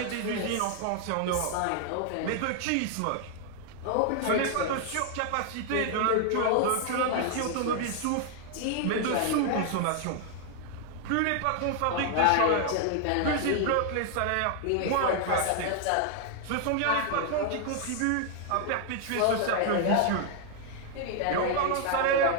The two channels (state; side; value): different; both; correlation 0.00